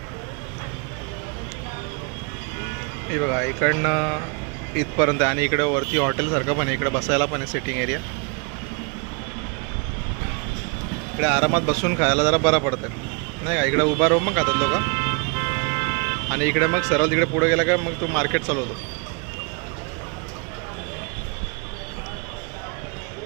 हे बघा, इकडनं इथपर्यंत आणि इकडे वरती हॉटेलसारखं पण आहे, इकडे बसायला पण आहे सिटिंग एरिया. इकडे आरामात बसून खायला जरा बरं पडतं नाही का. इकडे उभा राहून मग खातात लोक, आणि इकडे मग सरळ तिकडे पुढे गेला का मग तो मार्केट चालू होतो.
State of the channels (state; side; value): quieter; left; 34.4 dB